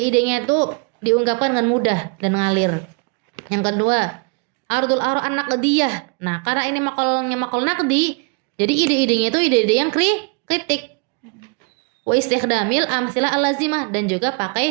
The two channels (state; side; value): quieter; left; 34.8 dB